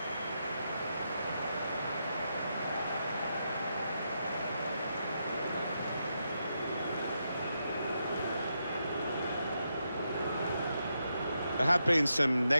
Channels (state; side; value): inverted; both; correlation -0.83